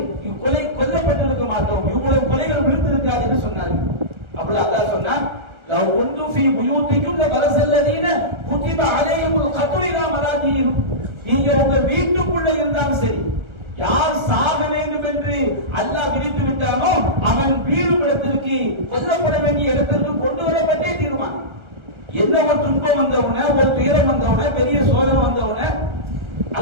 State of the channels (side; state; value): left; late; 1.4 ms